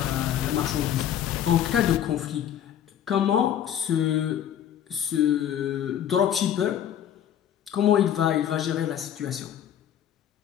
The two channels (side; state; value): right; quieter; 10.0 dB